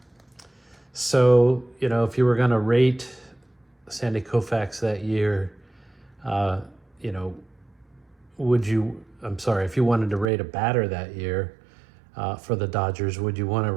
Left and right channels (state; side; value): drops out; left; at 10.2 s